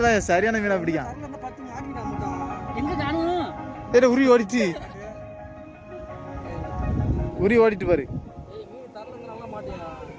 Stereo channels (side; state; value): both; identical; correlation 1.00